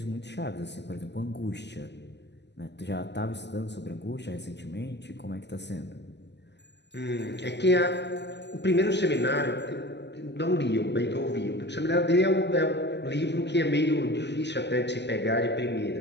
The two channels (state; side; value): late; right; 0.50 ms